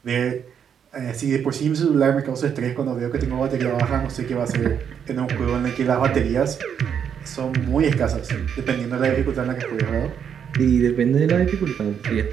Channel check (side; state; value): left; quieter; 8.0 dB